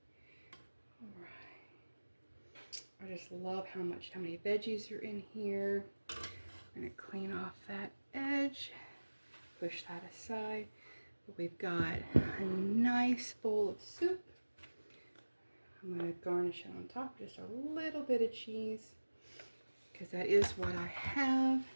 All right. I just love how many veggies are in here. I'm gonna clean off that edge. Push that aside. But we've got a nice bowl of soup. I'm going to garnish it on top, just a little bit of cheese, because that is what I have.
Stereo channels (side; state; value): both; inverted; correlation -1.00